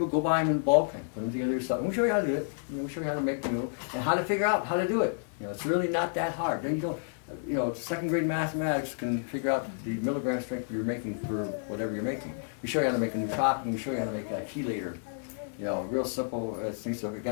go buy them in bulk and put them together yourself. And we'll show you how to do it. You know, we'll show you how to make the noodle and how to figure out how to do it. You know, it's really not that hard. Then you don't. You know, second grade mathematics can figure out the milligram strength you're making for whatever you're making. We show you how to make a nootropic. We show you how to make a chelator. You know, real simple things. So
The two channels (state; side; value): silent; right; digital silence